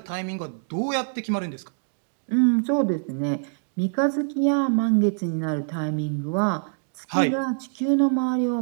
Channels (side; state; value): left; silent; digital silence